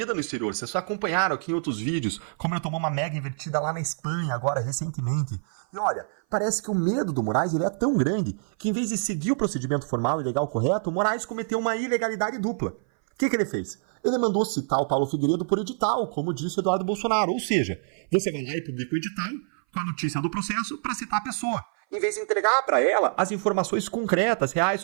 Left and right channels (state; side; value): silent; left; 57 dB below the other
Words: no exterior. Vocês só acompanharam aqui em outros vídeos como ele tomou uma mega invertida lá na Espanha, agora, recentemente. E olha, parece que o medo do Moraes ele é tão grande que, em vez de seguir o procedimento formal e legal correto, o Moraes cometeu uma ilegalidade dupla. O que ele fez? Ele mandou citar o Paulo Figueiredo por edital, como disse Eduardo Bolsonaro. Ou seja, você vai lá e publica o edital com a notícia do processo para citar a pessoa, em vez de entregar para ela as informações concretas, reais